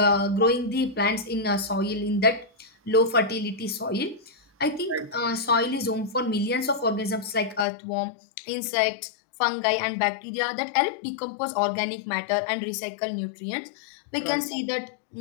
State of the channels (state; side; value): drops out; right; at 7.7 s